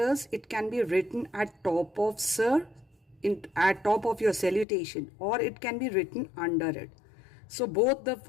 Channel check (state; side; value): drops out; right; at 4.7 s